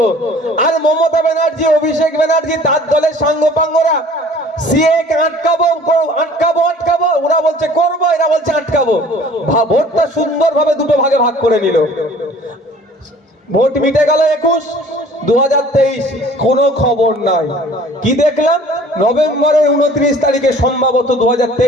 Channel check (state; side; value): normal; both; correlation 0.50